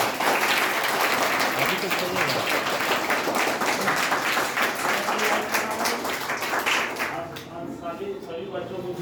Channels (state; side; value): identical; both; correlation 1.00